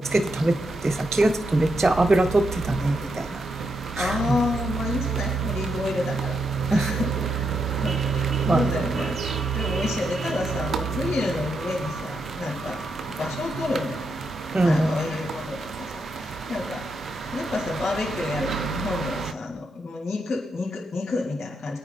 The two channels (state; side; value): normal; both; correlation 0.82